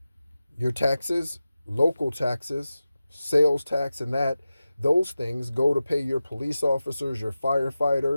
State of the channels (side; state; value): both; inverted; correlation -0.94